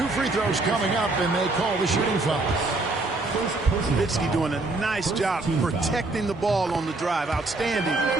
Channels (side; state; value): left; quieter; 3.1 dB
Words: 2 free throws coming up, and they call the shooting foul. Nowitzki doing a nice job protecting the ball on the drive. Outstanding